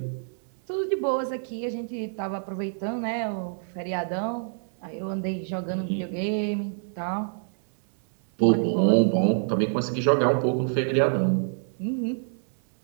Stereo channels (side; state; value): left; silent; 61 dB below the other